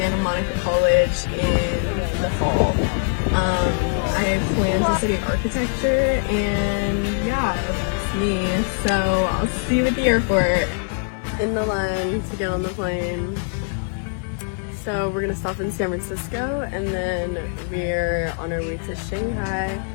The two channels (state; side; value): silent; right; 61 dB below the other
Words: Monica College in the fall. I have planned to study architecture and yeah, that's me. So I'll see you at the airport. In the line to get on the plane. So we're gonna stop in San Francisco and then we're on our way to Shanghai.